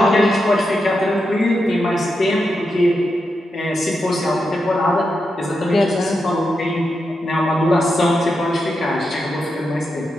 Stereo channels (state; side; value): normal; both; correlation 0.86